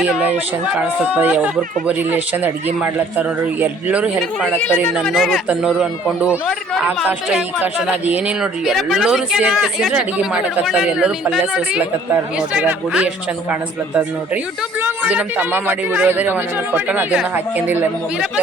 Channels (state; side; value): normal; both; correlation 0.56